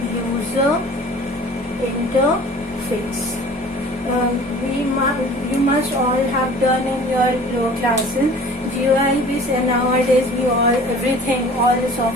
user interface. You must all have done in your lower classes GUI based, and nowadays all the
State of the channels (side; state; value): both; normal; correlation 0.45